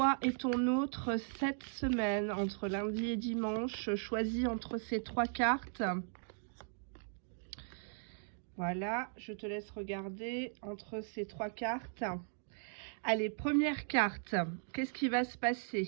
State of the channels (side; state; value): left; silent; digital silence